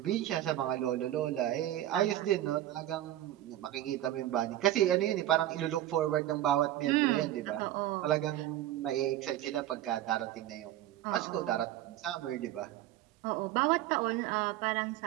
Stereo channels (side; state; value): left; quieter; 13.5 dB